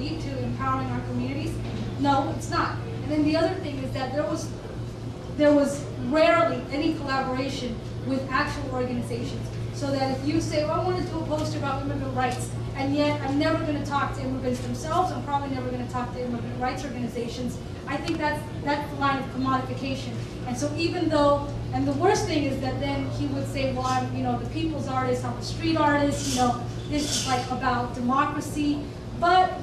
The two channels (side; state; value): both; identical; correlation 1.00